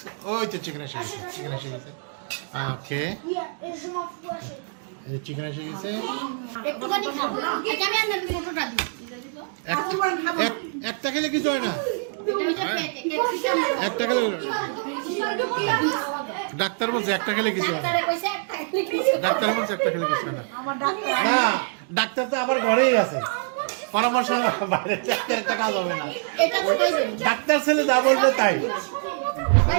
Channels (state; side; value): silent; left; 57 dB below the other